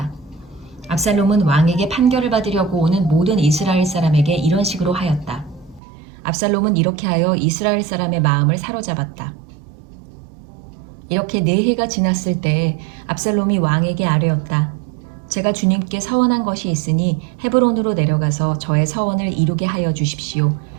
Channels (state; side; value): drops out; left; at 5.8 s